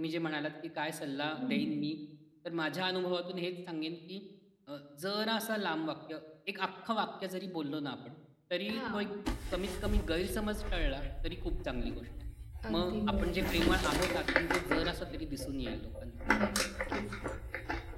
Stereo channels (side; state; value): both; identical; correlation 1.00